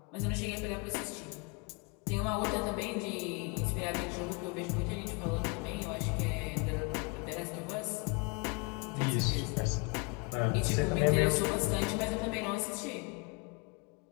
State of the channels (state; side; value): quieter; right; 31.3 dB